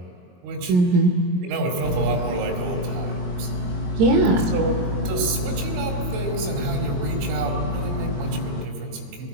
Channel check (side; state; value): left; late; 22 ms